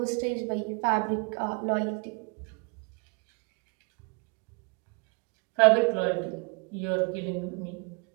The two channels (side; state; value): left; quieter; 34.3 dB